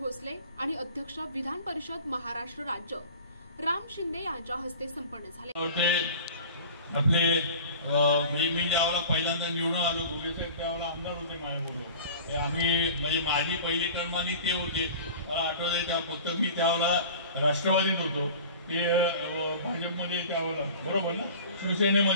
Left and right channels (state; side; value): inverted; both; correlation -0.40